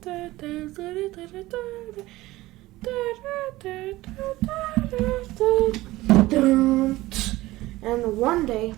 And one day,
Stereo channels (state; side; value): quieter; left; 18.1 dB